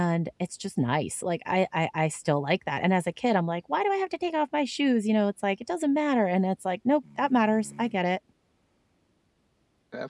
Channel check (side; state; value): both; identical; correlation 1.00